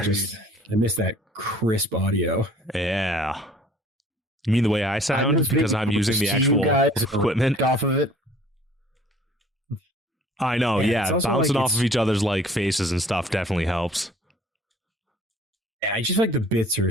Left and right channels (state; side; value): normal; both; correlation 0.53